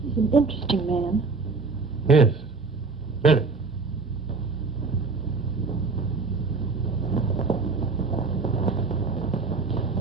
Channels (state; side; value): quieter; left; 4.2 dB